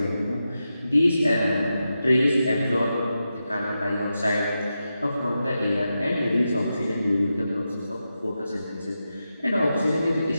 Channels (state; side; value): inverted; both; correlation -0.89